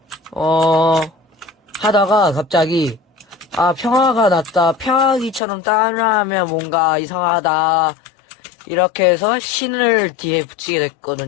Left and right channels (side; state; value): right; drops out; at 5.4 s